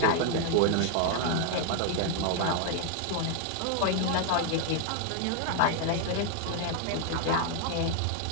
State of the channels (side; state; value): both; different; correlation 0.00